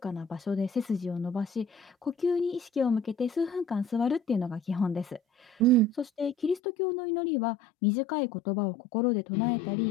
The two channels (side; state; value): right; drops out; at 6.6 s